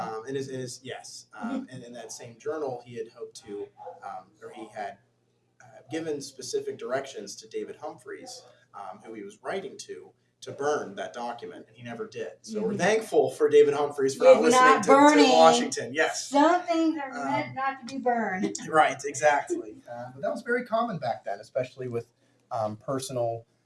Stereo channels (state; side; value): identical; both; correlation 1.00